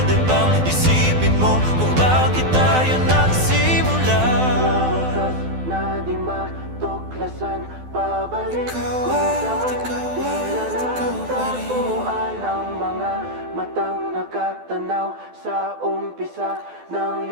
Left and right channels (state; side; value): late; left; 12 ms